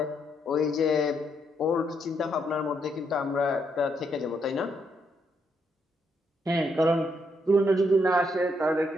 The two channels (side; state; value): both; normal; correlation 0.76